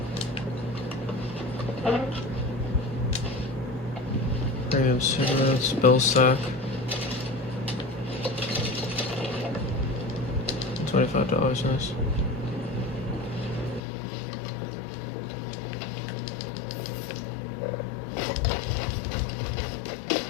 Premium cigarettes, bill sack. $25, nice.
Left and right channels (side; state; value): right; drops out; at 13.8 s